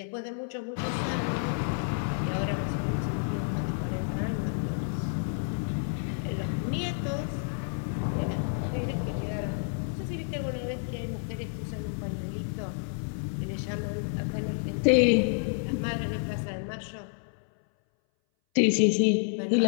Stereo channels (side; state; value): right; silent; 58 dB below the other